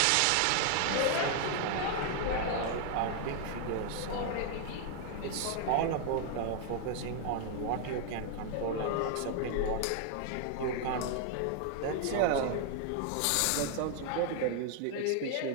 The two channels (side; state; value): both; different; correlation 0.00